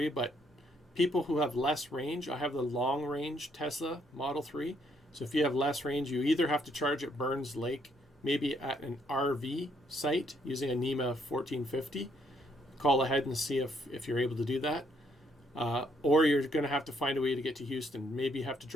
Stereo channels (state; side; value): normal; both; correlation 0.71